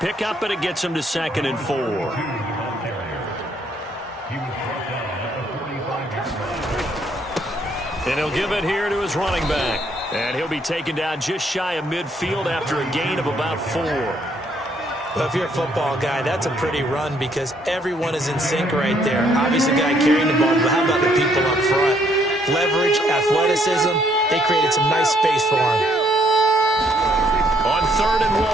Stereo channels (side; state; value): both; normal; correlation 0.68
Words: pickup, and it gets him to 2nd and 4. And he'll give it here to his running back. And he'll be taken down just shy of midfield after a gain of about 4. Well, if you're a football guy, that's a pretty run because everyone is in sync right there. Obviously, the guy carrying the ball, but how about the people up front? Leverage, athleticism, they created some nice space for him. On 3rd and